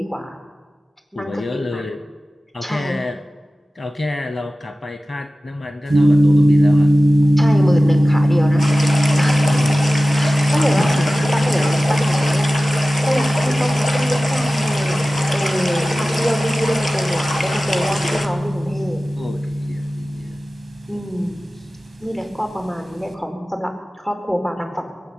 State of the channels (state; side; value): normal; both; correlation 0.96